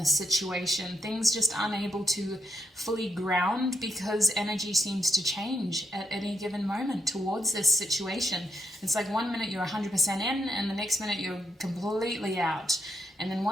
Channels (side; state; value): both; normal; correlation 0.78